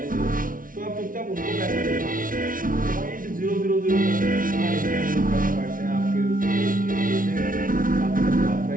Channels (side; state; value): left; late; 0.40 ms